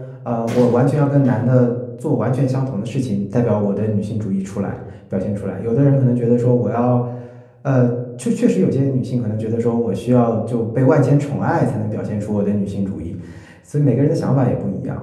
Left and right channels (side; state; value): both; identical; correlation 1.00